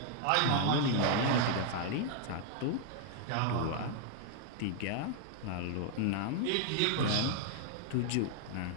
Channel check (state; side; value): different; both; correlation 0.00